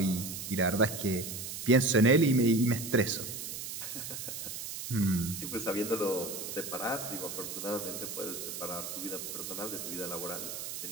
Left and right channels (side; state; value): right; noise; hiss, 7 dB below the sound